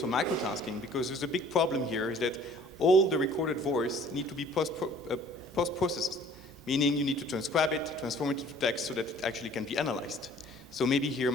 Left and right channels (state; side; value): normal; both; correlation 0.53